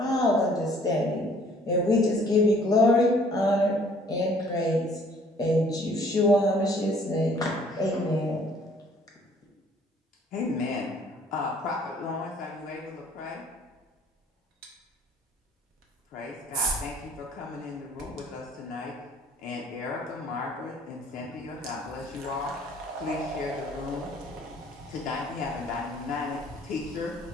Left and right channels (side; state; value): both; normal; correlation 0.58